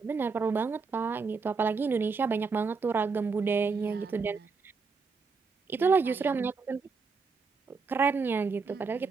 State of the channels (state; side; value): quieter; left; 4.8 dB